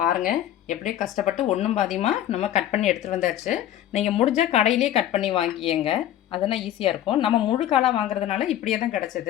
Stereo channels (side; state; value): right; quieter; 11.9 dB